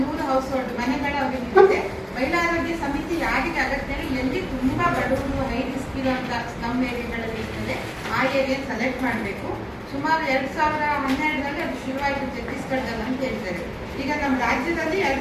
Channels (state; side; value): identical; both; correlation 1.00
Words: ಹೌಸ್ ಹೋಲ್ಡ್ ಮನೆಗಳ ಅವರಿಗೆ ಮಹಿಳಾ ಆರೋಗ್ಯ ಸಮಿತಿ ಯಾರಿಗೆ ಅಗತ್ಯ, ಎಲ್ಲಿ ತುಂಬಾ ಬಡವರು ಹೈ ರಿಸ್ಕ್ ಇರುವಂತ ಸ್ಲಮ್ ಏರಿಯಾಗಳಲ್ಲಿ ಇರ್ತದೆ ಆ ಏರಿಯಾ ಸೆಲೆಕ್ಟ್ ಮಾಡಬೇಕು. ಸುಮಾರು 2012ರಲ್ಲಿ ಅದು ಶುರುವಾಯಿತು ಛತ್ತೀಸ್ಗಢದಲ್ಲಿ ಅಂತ ಹೇಳ್ತಾರೆ. ಈಗ ನಮ್ಮ ರಾಜ್ಯದಲ್ಲಿ